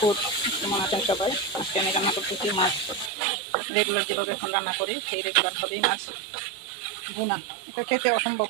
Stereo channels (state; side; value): drops out; left; at 3.1 s